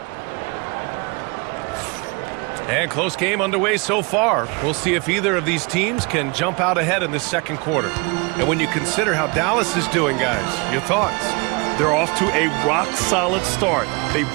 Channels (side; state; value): left; quieter; 29.7 dB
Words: And close game underway so far. We'll see if either of these teams can jump out ahead in this 2nd quarter. And when you consider how Dallas is doing, guys, your thoughts? They're off to a rock-solid start. They